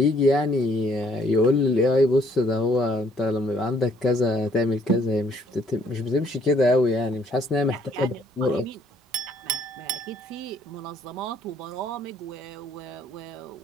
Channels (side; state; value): both; normal; correlation 0.64